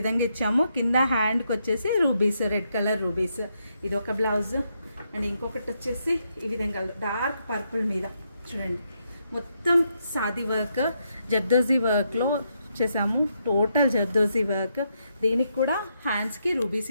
ఇచ్చాము. కింద హ్యాండ్కి వచ్చేసి రూబీస్, రెడ్ కలర్ రూబీస్. ఇది ఒక బ్లౌజ్. అండ్ ఇంకొకటి వచ్చేసి ఈ విధంగా డార్క్ పర్పుల్ మీద చూడండి, మొత్తం సాది వర్క్, జర్దోజీ వర్క్లో చేసాము. Total zardozi work. దీనికి కూడా హ్యాండ్స్కి రూబీస్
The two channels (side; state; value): both; inverted; correlation -0.79